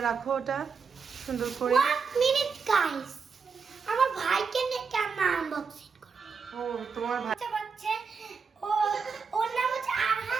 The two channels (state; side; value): quieter; left; 5.5 dB